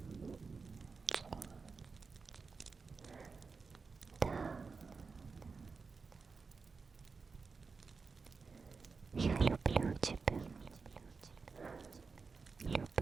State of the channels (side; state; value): left; quieter; 4.7 dB